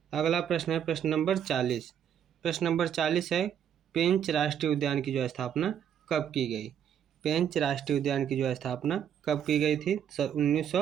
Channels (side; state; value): left; quieter; 9.0 dB